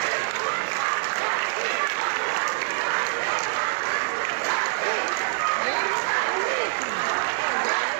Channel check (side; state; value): left; silent; digital silence